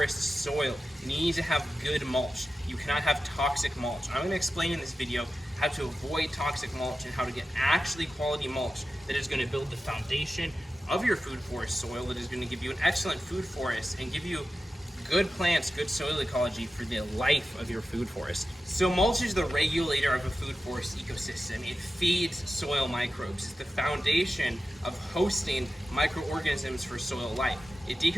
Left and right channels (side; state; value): both; normal; correlation 0.92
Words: soil. You need to have good mulch. You cannot have toxic mulch. I'm gonna explain in this video how to avoid toxic mulch and how to get actually quality mulch that is gonna build the foundation of your food forest soil, that is gonna give you an excellent food forest and give you good plants, good soil ecology for the life of your food forest. So mulch is the regulator of a food forest ecosystem. It feeds soil microbes. It's the foundation of hosting microorganisms for soil life. It